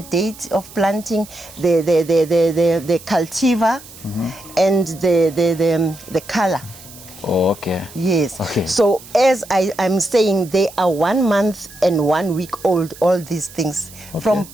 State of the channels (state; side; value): noise; right; hiss, 19 dB below the sound